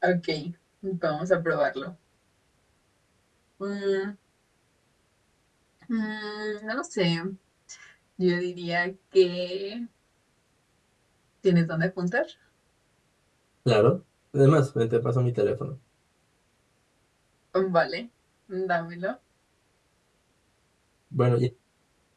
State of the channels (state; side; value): identical; both; correlation 1.00